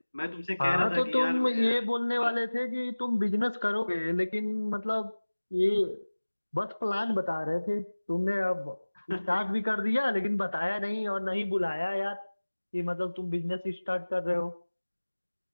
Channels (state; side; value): inverted; both; correlation -1.00